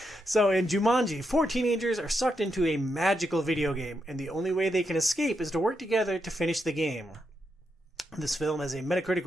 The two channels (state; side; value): normal; both; correlation 0.83